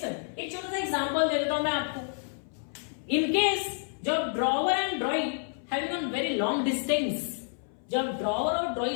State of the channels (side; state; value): right; silent; 58 dB below the other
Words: एक छोटा सा एग्जांपल दे देता हूं मैं आपको। इन केस जब drawer and drawing having on very long distance, जब ड्रॉवर और